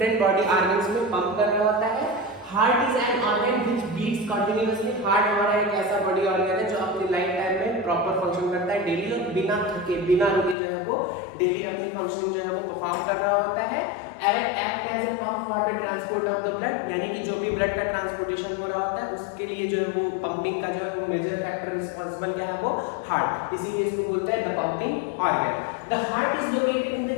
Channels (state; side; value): drops out; right; at 10.6 s